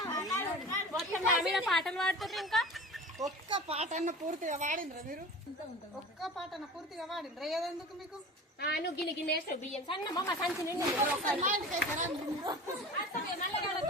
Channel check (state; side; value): normal; both; correlation 0.36